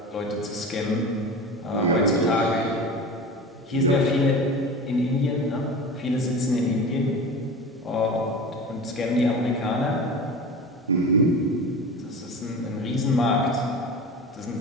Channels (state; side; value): normal; both; correlation 0.32